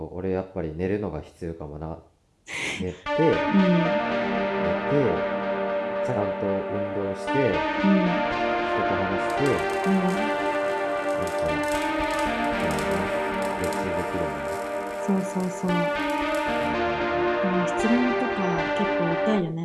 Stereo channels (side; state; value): both; identical; correlation 1.00